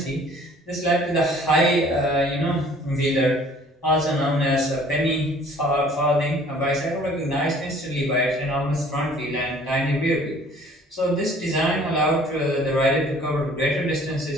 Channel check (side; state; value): both; normal; correlation 0.54